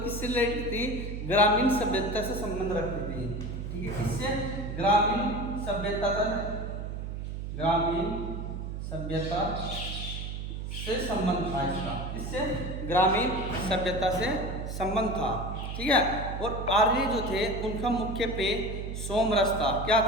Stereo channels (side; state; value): right; noise; hum, 6 dB below the sound